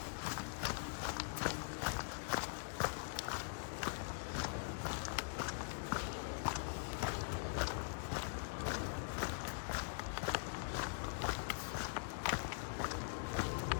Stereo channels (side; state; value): right; silent; digital silence